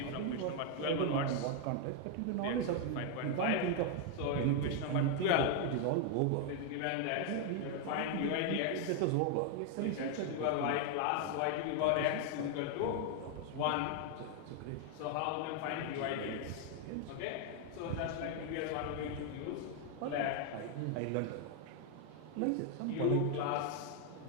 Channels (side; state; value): both; different; correlation 0.00